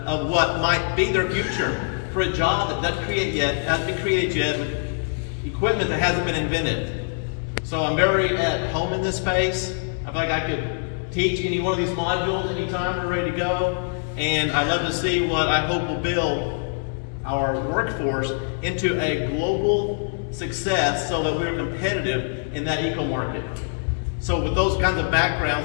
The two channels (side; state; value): right; silent; digital silence